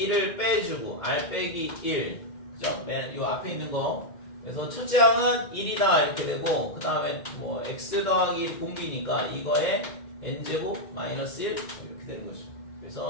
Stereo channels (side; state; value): right; late; 2.1 ms